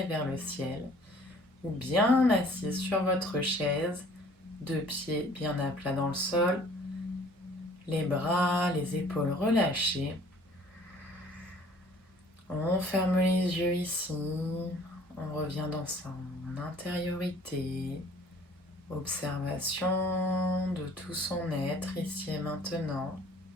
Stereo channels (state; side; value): normal; both; correlation 0.54